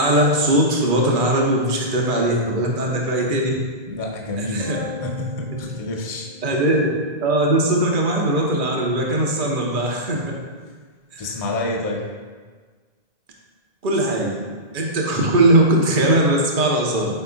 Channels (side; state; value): left; late; 2.4 ms